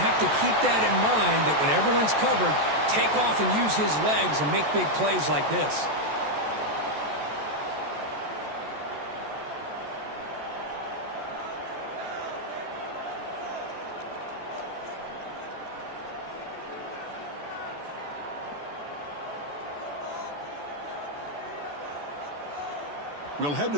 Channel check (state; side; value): late; left; 14 ms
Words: have to keep that in mind, that when everyone's covered, take off and use his legs and make big plays like this. We'll head to